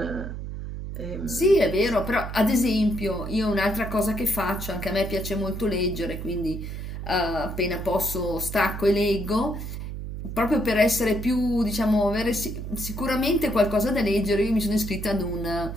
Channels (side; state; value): right; noise; hum, 7 dB below the sound